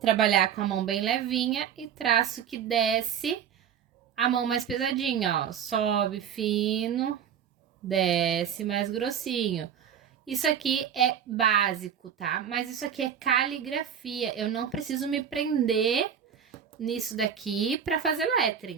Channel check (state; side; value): quieter; left; 8.4 dB